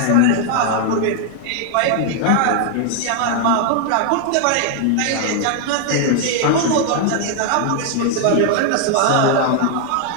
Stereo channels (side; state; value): both; different; correlation 0.00